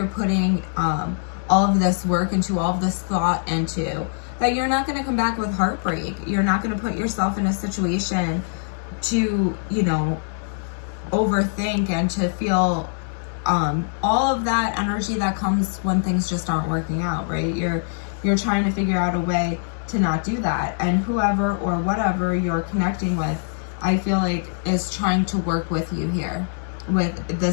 putting all of this work into, all of this thought into, that you're not going to come back with heartbreak. You're not going to put yourself in a situation to, overthink and to feel all of that energy that comes when things just aren't working out, right? You're trying to figure out a way to not do that. And whoever or whatever you're connecting with, I feel like is trying to work with you here.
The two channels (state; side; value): silent; right; digital silence